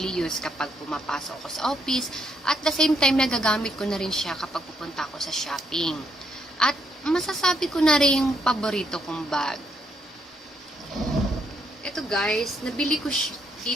use kapag pumapasok ako sa office at the same time nagagamit ko na rin siya kapag pupunta ako sa shopping. At masasabi ko na rin yung paborito kong bag. Ito guys, nabili ko siya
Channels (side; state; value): both; normal; correlation 0.74